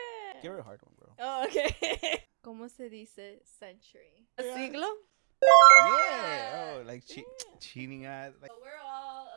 Give her a hard one, bro. Oh, okay. ¿Cómo se dice century? Siglo. Yeah. Oh, like cheating at. Like. So we're all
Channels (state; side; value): silent; left; digital silence